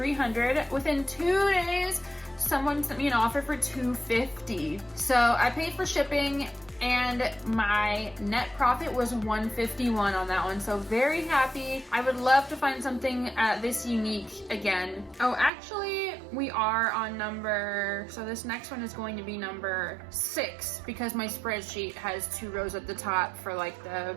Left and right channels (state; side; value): drops out; left; at 15.5 s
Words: Within 2 days, someone sent me an offer for $250. So I paid for shipping, and my net profit was $151 on that one. So very happy. I would love to find something this unique again. Oh, actually, we are on number, so this next one is going to be number 6 because my spreadsheet has 2 rows at the top for like the